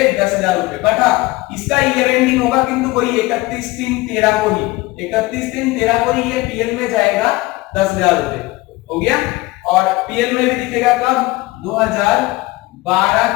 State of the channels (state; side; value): quieter; right; 20.7 dB